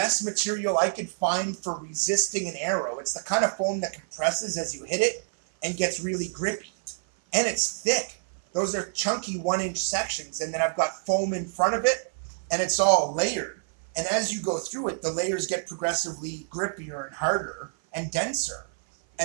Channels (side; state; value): left; silent; 55 dB below the other